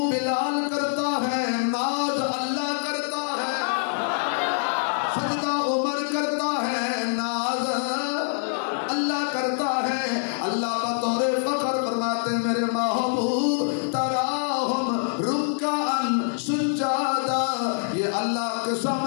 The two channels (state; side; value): silent; right; 56 dB below the other